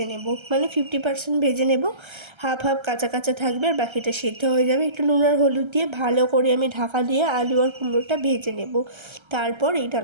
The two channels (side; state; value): left; late; 1.3 ms